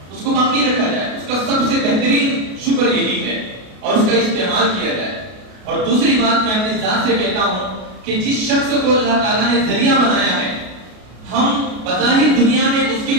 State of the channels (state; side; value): late; left; 33 ms